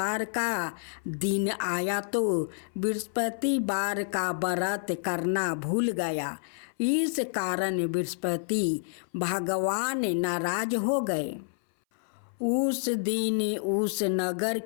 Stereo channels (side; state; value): right; silent; 59 dB below the other